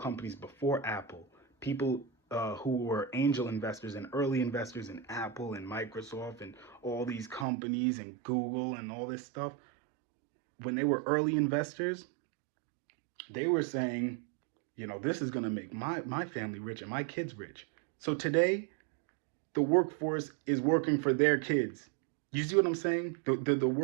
before Apple, people who were angel investors and early investors in Apple and Microsoft and all these companies and Google and all this stuff, when they were early investors, they were saying, this is going to make my family rich and my kids rich. So today, the workforce is working for their kids. You see what I'm saying? The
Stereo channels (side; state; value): left; drops out; at 7.5 s